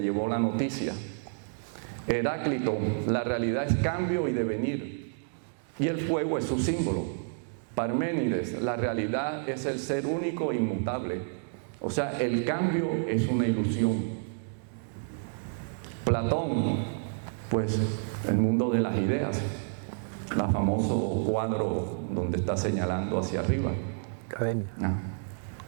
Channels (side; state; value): left; silent; digital silence